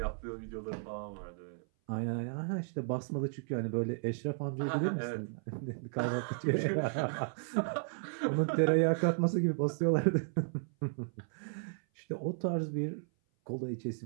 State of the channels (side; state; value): left; silent; 55 dB below the other